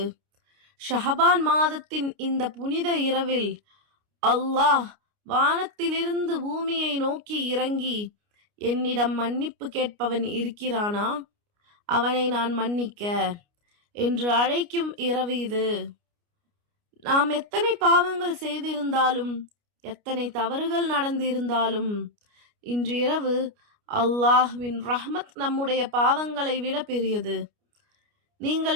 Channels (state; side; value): late; left; 29 ms